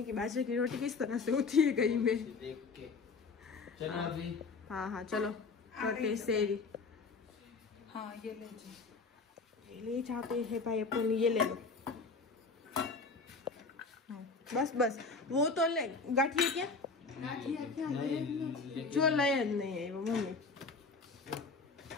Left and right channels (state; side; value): quieter; right; 4.3 dB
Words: की बाजरे की रोटी किस तरह से होती है कहीं में देख के। चलो अभी हाँ चलो करते सेरी। हाँ ये ले जाते हैं भाई अपन, ये ले लो। बस वो तो ले गाठिए क्या जो लय नहीं है वो मम्मी,